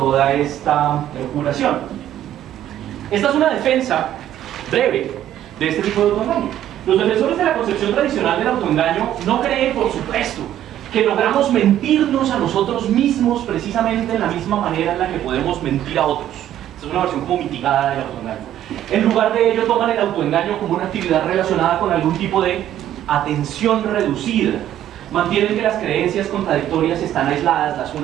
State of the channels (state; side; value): quieter; left; 11.8 dB